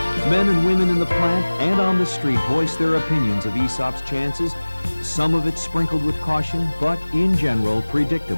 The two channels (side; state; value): both; inverted; correlation -1.00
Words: Men and women in the plant and on the street voiced their opinions of ESOP's chances, some of it sprinkled with caution, but in general,